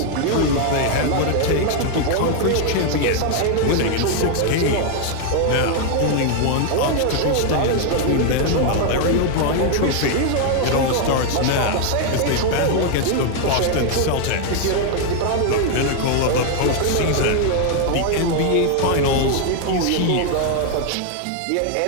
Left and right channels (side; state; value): both; different; correlation 0.00